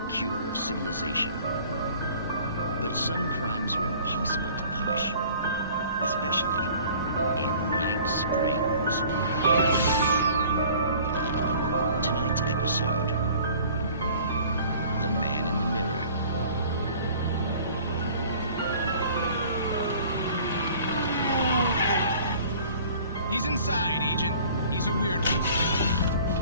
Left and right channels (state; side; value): inverted; both; correlation -0.49